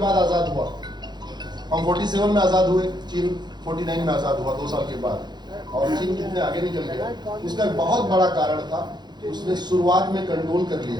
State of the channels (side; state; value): left; late; 0.21 ms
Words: आजाद हुआ, हम 47 में आजाद हुए, चीन 49 में आजाद हुआ 2 साल के बाद। और चीन कितने आगे निकल गया, उसका एक बहुत बड़ा कारण था उसने शुरुआत में कंट्रोल कर